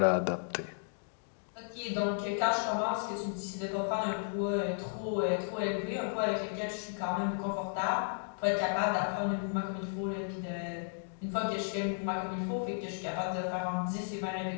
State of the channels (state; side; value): silent; right; digital silence